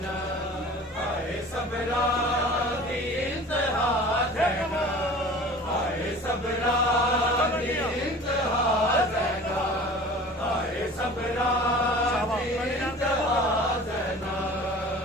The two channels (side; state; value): both; normal; correlation 0.42